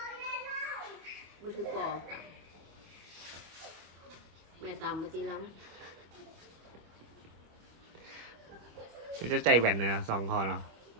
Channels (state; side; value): late; left; 25 ms